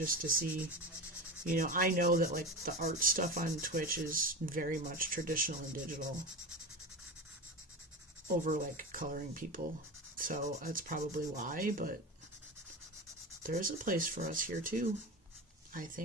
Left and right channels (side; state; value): both; normal; correlation 0.26